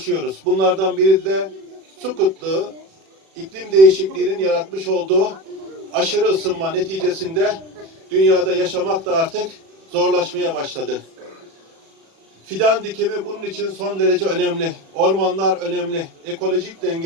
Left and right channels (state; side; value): late; left; 36 ms